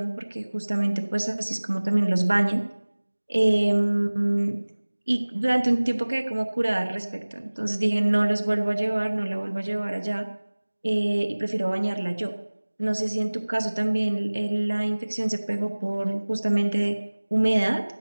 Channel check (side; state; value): both; inverted; correlation -1.00